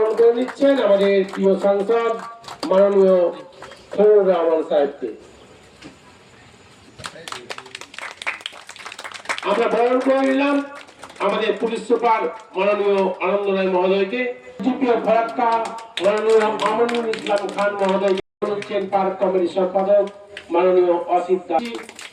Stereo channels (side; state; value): both; identical; correlation 1.00